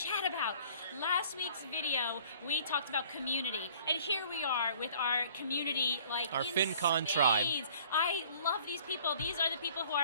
about. Last week's video, we talked about community. And here we are with our community, like our in FinCon spades. tribe. I love these people. These are the people who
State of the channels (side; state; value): both; inverted; correlation -0.53